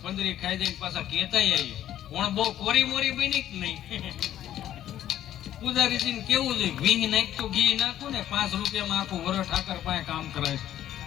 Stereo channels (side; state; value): right; quieter; 11.8 dB